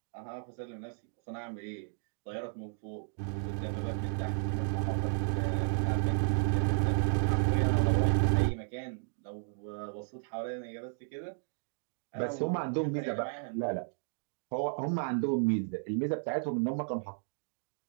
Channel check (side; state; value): left; silent; digital silence